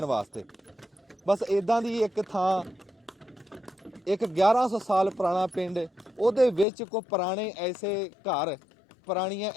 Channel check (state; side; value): drops out; right; at 6.7 s